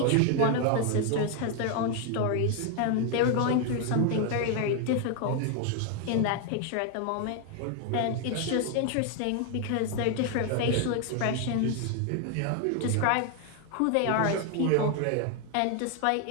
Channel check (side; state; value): both; different; correlation 0.01